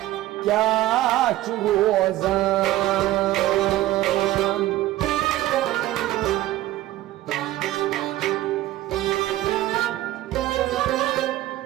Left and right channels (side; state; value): left; quieter; 15.5 dB